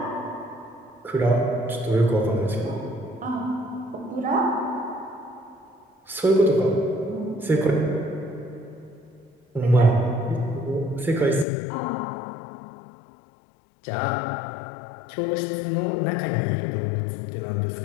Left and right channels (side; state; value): right; drops out; at 11.5 s